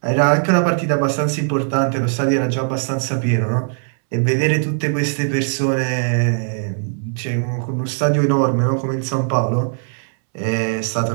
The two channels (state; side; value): silent; left; 66 dB below the other